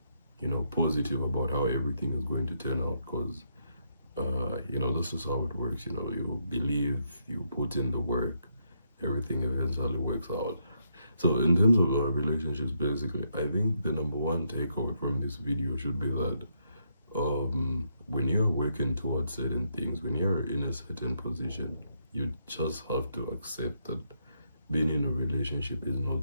positive about how everything is going to turn out, because this is how it works. You believe, you put in the work, everything eventually works out. So in terms of relationships, basically, I think the number one takeaway from this video should be that when you're working towards certain things, when you're in a certain position, you just have to accept that being in a relationship is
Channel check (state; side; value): inverted; both; correlation -0.77